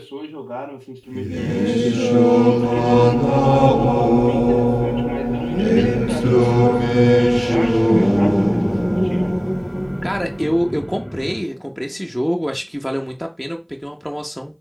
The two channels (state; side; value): identical; both; correlation 1.00